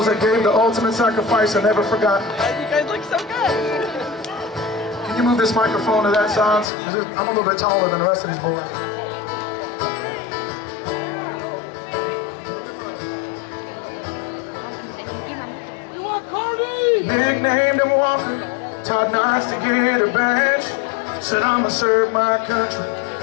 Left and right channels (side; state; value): right; drops out; at 6.7 s